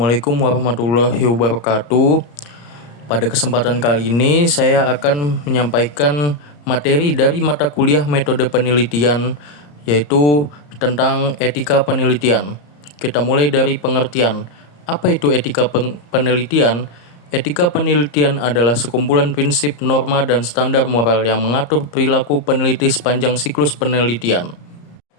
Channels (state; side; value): late; right; 34 ms